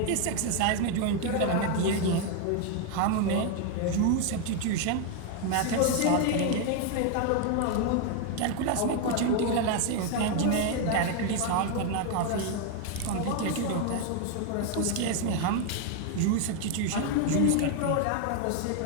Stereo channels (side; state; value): both; different; correlation 0.01